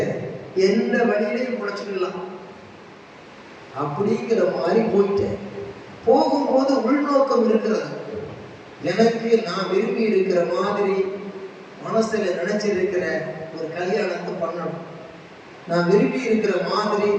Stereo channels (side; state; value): both; identical; correlation 1.00